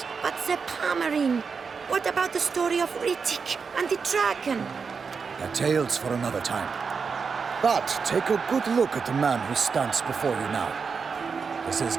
But the Pomerine, what about the story of Rittik and the dragon? They're tales for another time. But take a good look at the man who stands before you now. This is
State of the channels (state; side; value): quieter; left; 5.4 dB